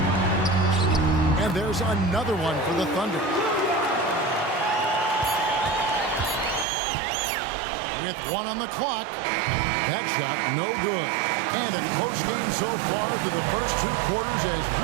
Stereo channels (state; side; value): drops out; left; at 6.7 s